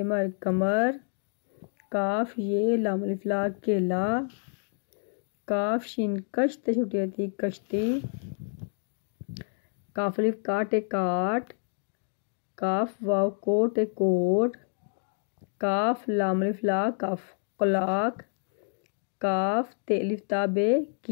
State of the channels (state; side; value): silent; right; 59 dB below the other